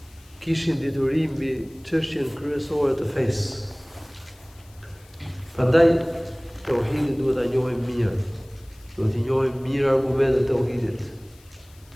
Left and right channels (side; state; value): left; noise; hiss, 28 dB below the sound